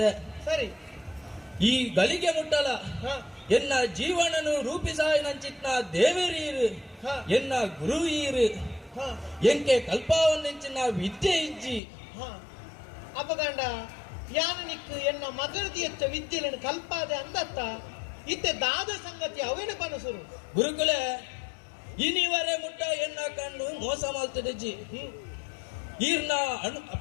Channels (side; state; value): right; drops out; at 11.8 s